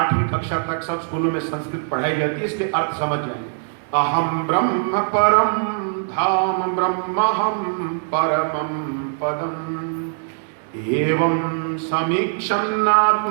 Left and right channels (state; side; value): silent; left; digital silence